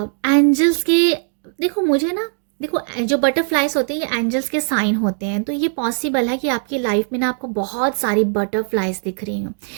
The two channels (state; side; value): silent; left; digital silence